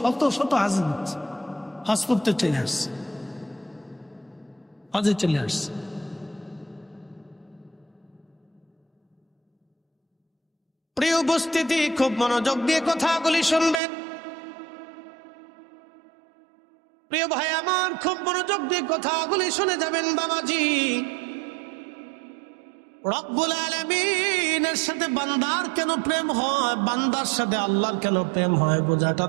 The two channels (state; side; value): drops out; left; at 13.8 s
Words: শত হাজির হচ্ছে, হজ করতে চলে আসছে, হজে চলে আসছে। প্রিয় উপস্থিতি, খুব মনোযোগ দিয়ে কথাগুলি শুনবেন। প্রিয় ভাই আমার, খুব মনোযোগ দিয়ে কথাগুলি শুনে যাবেন বাবাজি। রব্বুল আলামিনের সাথে বান্দার কেন প্রেম হয়, বান্দার সাথে আল্লাহর কেন প্রেম হয় বোঝাটা